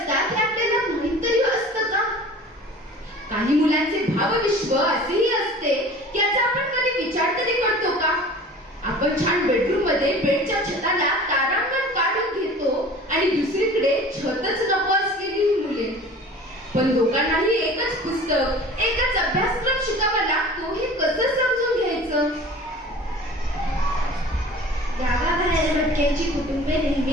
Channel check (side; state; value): both; normal; correlation 0.42